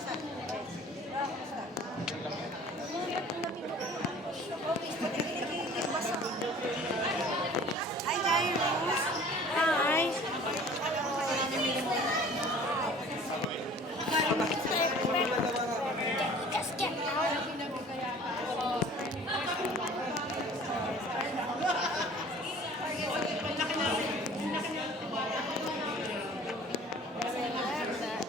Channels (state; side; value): normal; both; correlation 0.48